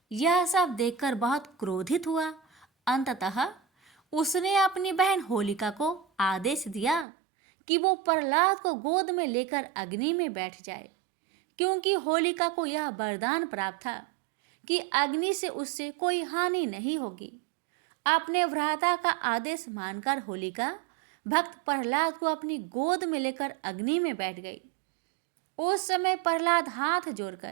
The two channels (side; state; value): left; drops out; at 7.1 s